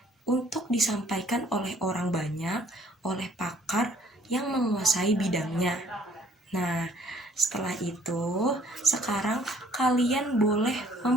untuk disampaikan oleh orang banyak, oleh pakar yang menguasai bidangnya. Nah, setelah itu, sekarang kalian boleh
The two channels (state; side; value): normal; both; correlation 0.59